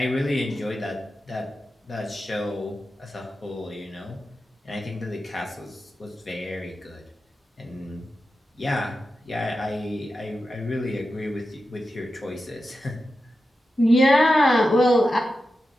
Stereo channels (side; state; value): both; normal; correlation 0.91